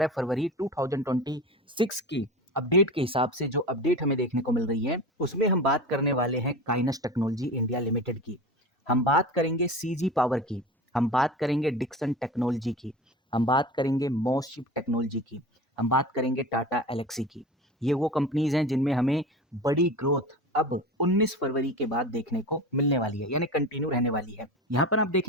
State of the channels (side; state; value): both; normal; correlation 0.31